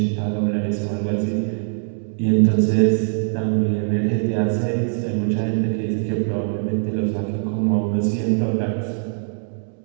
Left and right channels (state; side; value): silent; left; digital silence